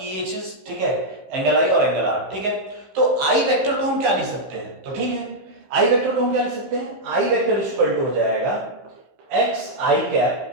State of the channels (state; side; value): late; left; 15 ms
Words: ये चीज, ठीक है, एंगल आई और एंगल आर। ठीक है, तो आई वेक्टर को हम क्या लिख सकते हैं, तो ठीक है, आई वेक्टर को हम क्या लिख सकते हैं, आई वेक्टर इक्वल टू हो जाएगा एक्स आई